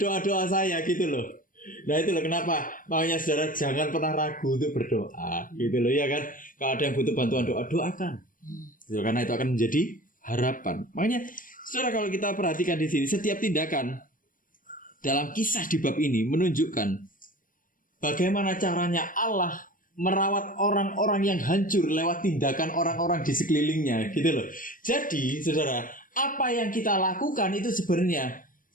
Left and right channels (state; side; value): late; right; 0.40 ms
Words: doa-doa saya, gitu loh. Nah itu loh kenapa makanya saudara jangan pernah ragu untuk berdoa, gitu loh ya kan. Kalau ada yang butuh bantuan doa, doakan, gitu, karena itu akan menjadi harapan. Makanya saudara kalau kita perhatikan di sini, setiap tindakan dalam kisah di bab ini menunjukkan bagaimana caranya Allah merawat orang-orang yang hancur lewat tindakan orang-orang di sekelilingnya, gitu loh. Jadi saudara, apa yang kita lakukan itu sebenarnya